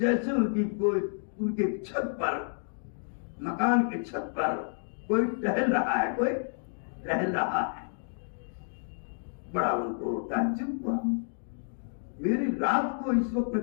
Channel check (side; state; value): right; silent; digital silence